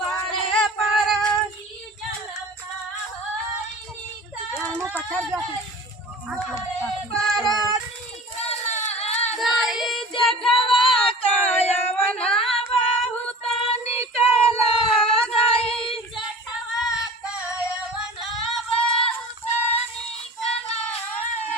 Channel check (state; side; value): normal; both; correlation 0.40